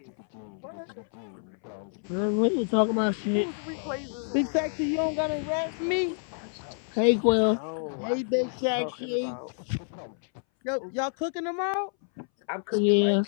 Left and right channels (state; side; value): silent; right; 59 dB below the other